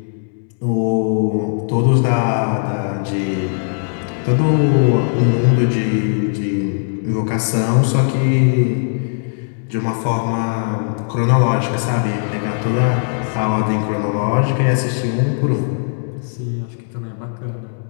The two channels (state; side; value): silent; right; 67 dB below the other